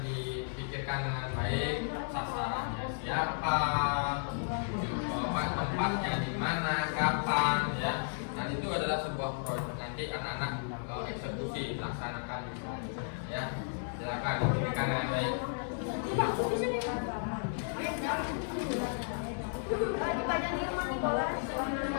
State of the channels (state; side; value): silent; right; digital silence